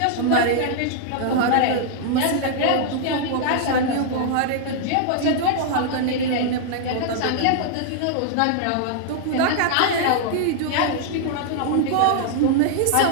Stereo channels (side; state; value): both; different; correlation -0.01